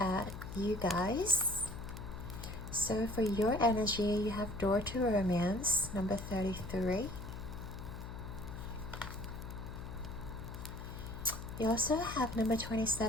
at you guys. So for your energy, you have Door to Romance, number 33. You also have number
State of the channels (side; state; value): left; noise; hum, 9 dB below the sound